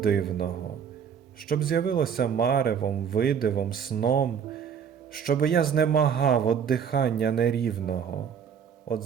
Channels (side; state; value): left; quieter; 7.5 dB